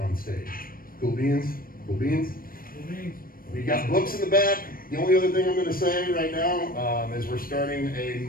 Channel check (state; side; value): late; right; 0.41 ms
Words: on stage. Cool beans? Cool beans? Cool beans. We got books in the back. The only other thing I'm going to say right now is we're starting a